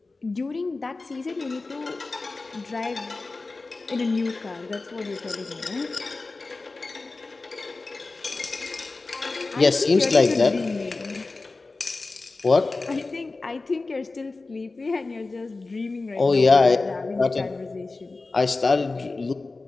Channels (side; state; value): right; quieter; 3.6 dB